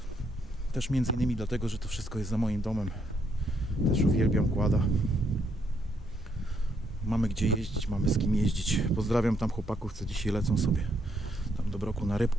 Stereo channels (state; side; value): normal; both; correlation 0.74